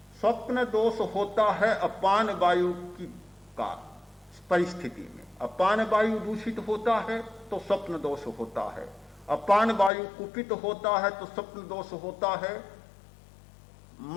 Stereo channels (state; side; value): drops out; right; at 9.9 s